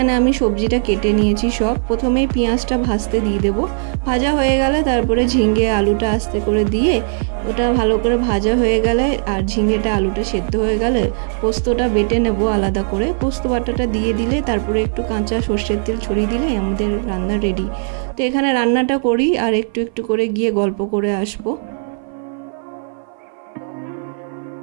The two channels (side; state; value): left; silent; 57 dB below the other